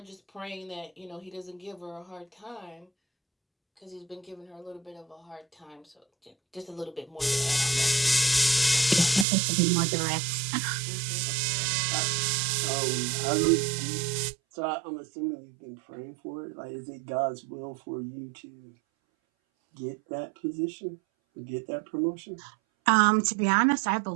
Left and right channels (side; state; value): left; drops out; at 9.2 s